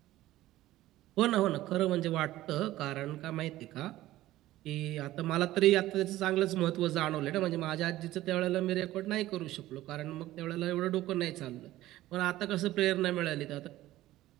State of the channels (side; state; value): left; quieter; 15.6 dB